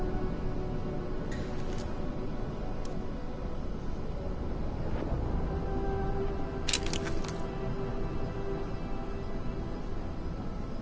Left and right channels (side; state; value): both; identical; correlation 1.00